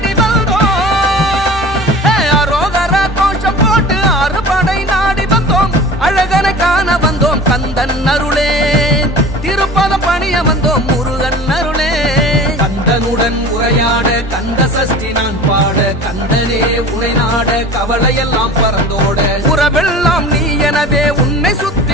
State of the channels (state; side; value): normal; both; correlation 0.39